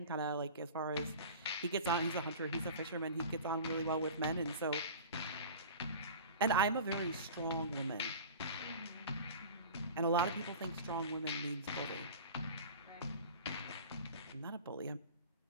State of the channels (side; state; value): both; inverted; correlation -0.37